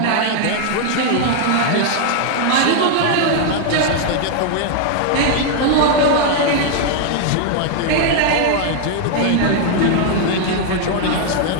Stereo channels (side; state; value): both; different; correlation 0.00